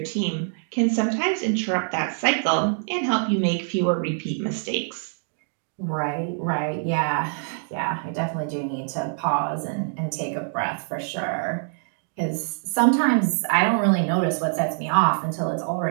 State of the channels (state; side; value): silent; left; digital silence